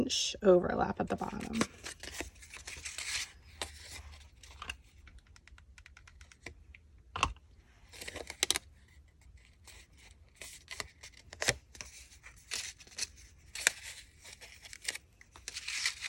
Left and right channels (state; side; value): identical; both; correlation 1.00